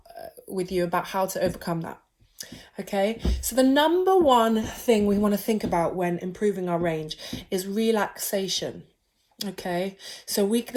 with you about how to overcome that. Okay, so the number one thing we want to think about when improving our range is relaxation. Okay, so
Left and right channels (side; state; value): both; identical; correlation 1.00